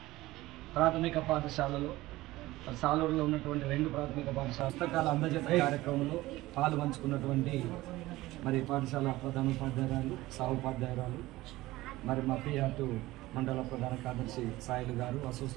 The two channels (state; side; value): quieter; left; 18.0 dB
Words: ప్రాథమిక పాఠశాలలో సాలూరులో ఉన్నటువంటి 2 ప్రాథమిక పాఠశాల పుస్తకాల అందజేత కార్యక్రమంలో పాలు పంచుకున్నటువంటి మరి పాఠశాల ప్రధానోపాధ్యాయురాలు సహోపాధ్యాయురాలు మరి మా పిఆర్టు మండల ప్రధాన కార్యదర్శి సాయిలు గారు,